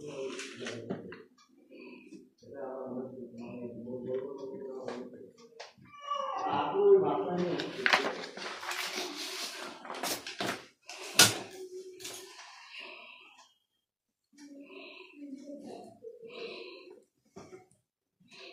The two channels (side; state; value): both; identical; correlation 1.00